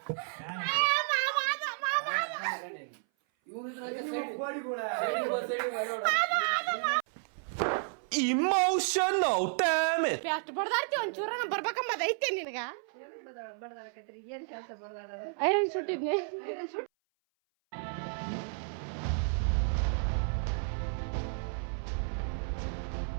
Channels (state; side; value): silent; left; 56 dB below the other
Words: Emotional, damn it! ಅಷ್ಟು ಬಡ್ದಾಡ್ತಿ ಒಂಚೂರ ಬರ್ಬೇಕಂಬದ ಐತೆ ನಿನಗ. ಬಡದಾಡಕತ್ರಿ ಏನ್ ಕೆಲಸ ಬಡದಾಡ ಐರನ್ ಸುಟ್ಟಿದ್ನಿ.